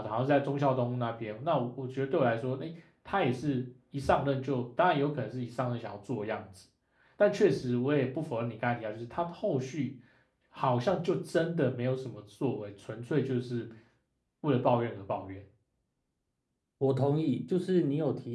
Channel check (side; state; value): both; identical; correlation 1.00